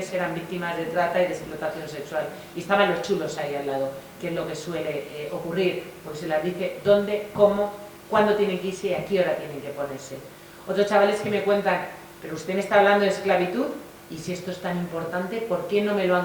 eran víctimas de trata y de explotación sexual. Y estaban los chulos ahí al lado, que es lo que suele ocurrir, porque se les dice dónde, cómo, cuándo tienen que irse y a qué hora tienen que ponerse. Otros chavales que me cuentan, pero usted me está hablando de esclavitud, y si esto es tan importante, ¿por qué no me lo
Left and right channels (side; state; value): both; identical; correlation 1.00